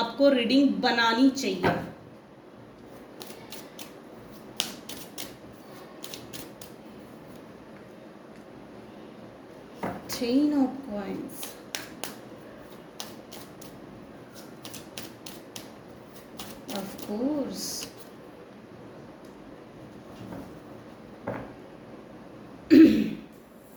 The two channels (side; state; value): both; identical; correlation 1.00